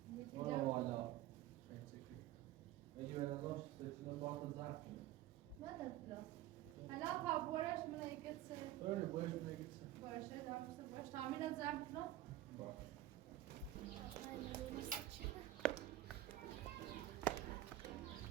برو والا اگه به نظرش سچینه باید زرد کنه ما در پلاس حالا تا بورش من یکت سه برنه بایش بگید سه بورشه دارمسته بورش تامین زرد کنم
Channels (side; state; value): left; quieter; 14.3 dB